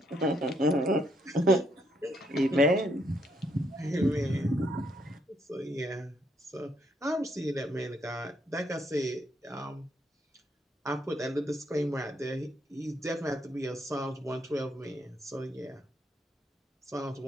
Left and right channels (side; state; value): both; normal; correlation 0.74